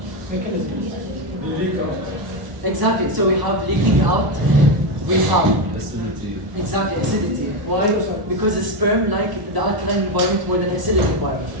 Exactly. So we have leaking out. We have Acidity. exactly acidity. Why? Because the sperm like the alkaline environment more than acidic environment.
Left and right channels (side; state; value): left; late; 1.0 ms